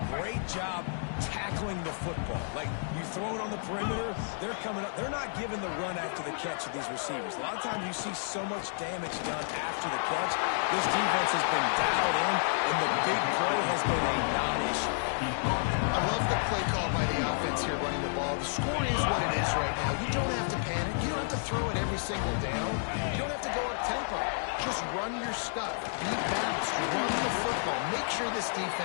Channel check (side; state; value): right; silent; digital silence